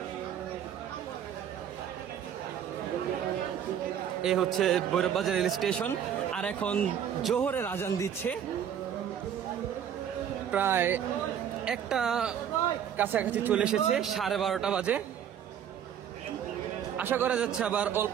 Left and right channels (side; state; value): left; quieter; 9.1 dB